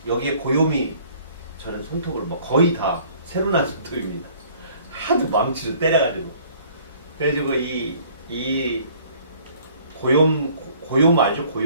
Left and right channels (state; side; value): inverted; both; correlation -0.56